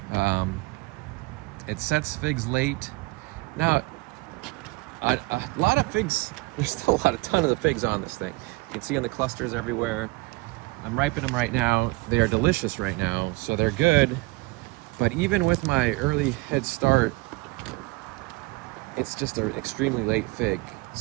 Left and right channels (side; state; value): left; quieter; 23.7 dB